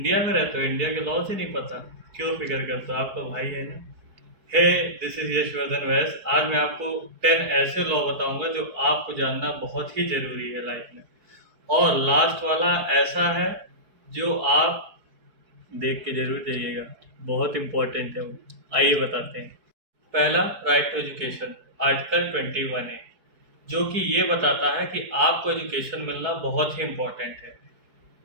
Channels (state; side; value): late; left; 4.6 ms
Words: में रहते हो, इंडिया के लॉज ही नहीं पता, क्यों फिक्र करते हो, आप तो भाई है ना। हे, दिस इज यशवर्धन वैस। आज मैं आपको 10 ऐसे लॉ बताऊंगा जो आपको जानना बहुत ही जरूरी है लाइफ में। और लास्ट वाला ऐसा है जो आप देख के जरूर जाइएगा, बहुत इंपॉर्टेंट है वो। आइए बताते हैं। पहला, राइट टू एजुकेशन, आर्टिकल 21 है, जो कि ये बताता है कि आपको एजुकेशन मिलना बहुत ही इंपॉर्टेंट है।